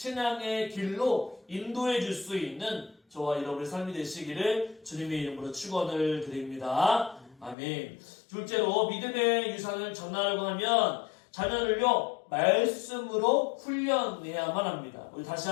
길로 인도해 줄 수 있는 저와 여러분의 삶이 되시기를 주님의 이름으로 축원을 드립니다. 아멘. 둘째로 믿음의 유산을 전하려고 하면 자녀를요 말씀으로 훈련해야만 합니다. 우리 다시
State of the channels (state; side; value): drops out; right; at 7.6 s